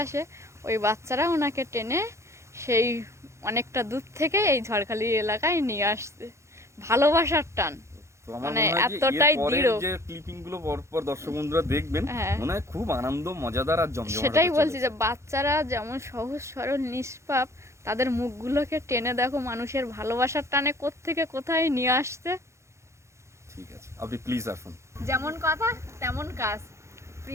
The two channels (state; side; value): late; left; 0.14 ms